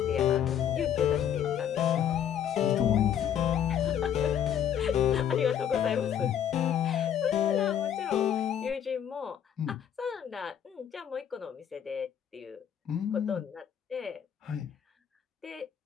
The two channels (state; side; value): quieter; right; 9.3 dB